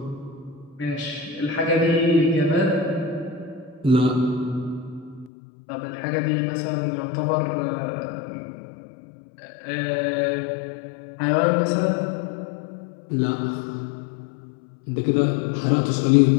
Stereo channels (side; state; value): right; drops out; at 5.3 s